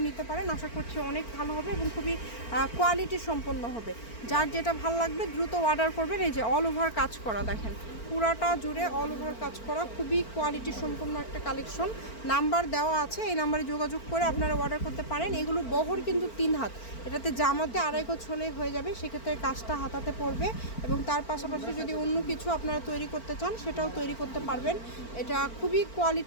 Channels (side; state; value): right; late; 4.4 ms